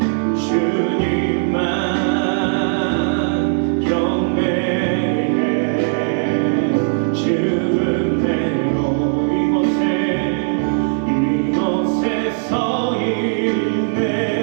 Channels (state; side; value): silent; left; digital silence